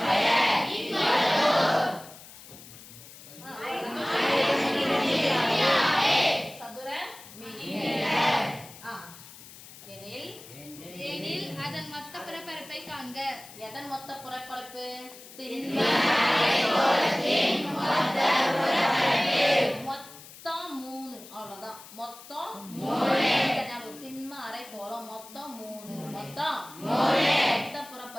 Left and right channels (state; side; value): noise; left; hiss, 18 dB below the sound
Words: சதுர எனில் அதன் மொத்த புறப்பரப்பை காண்க. எதன் மொத்த புறப்பரப்பு? மொத்தம் 3. அவ்வளவுதான். மொத்தம் 3. திண்ம அரைக்கோளம் மொத்தம் 3. மொத்தம் மொத்த